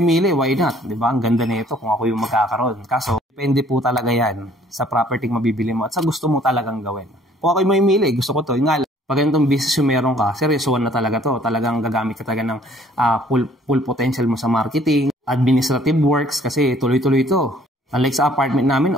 why not? Diba? Ang ganda nito kung ako yung magkakaroon. Kaso, depende po talaga yan sa property mabibili mo at sa gusto mo talagang gawin. Kung ako yung mamimili, gusto ko to. Yung nga lang, pag ganitong business yung meron ka, seryosoan na talaga to. Talagang gagamit ka talaga ng full potential mo sa marketing, administrative works, kasi tuloy-tuloy to. Unlike sa apartment namin,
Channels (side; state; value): both; normal; correlation 0.58